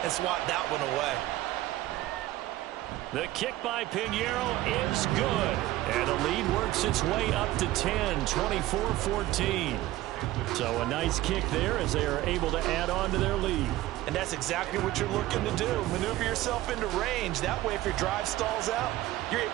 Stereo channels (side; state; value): left; quieter; 16.2 dB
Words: and swat that one away. The kick by Pinheiro is good. And the lead works its way up to 10, 24-14. So a nice kick there as they are able to add on to their lead. And that's exactly what you're looking to do. Maneuver yourself into range. That way, if your drive stalls out, you're